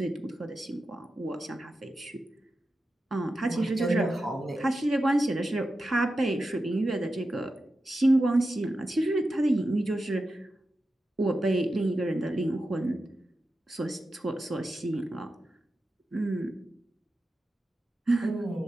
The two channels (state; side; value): normal; both; correlation 0.91